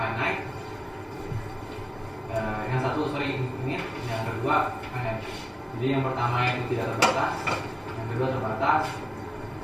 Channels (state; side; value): identical; both; correlation 1.00